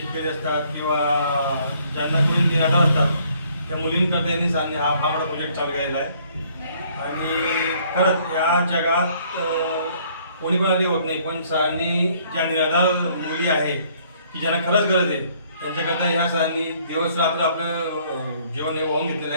असतात किंवा ज्यांना करून निराधार असतात त्या मुलींकरता यांनी सरांनी हा फार मोठा प्रोजेक्ट चालू केलेला आहे. आणि खरंच या जगात कोणी पण आधी होत नाही, पण सरांनी ज्या निराधार मुली आहे की ज्यांना खरंच गरज आहे त्यांच्याकरता ह्या सरांनी दिवस रात्र आपलं जीवन हे वाहून घेतलेलं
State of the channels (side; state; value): both; inverted; correlation -0.62